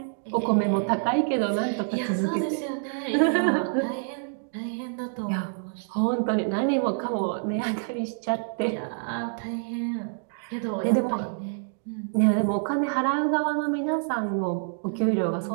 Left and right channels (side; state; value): left; silent; digital silence